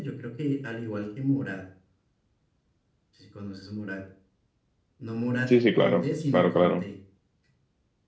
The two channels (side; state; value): both; identical; correlation 1.00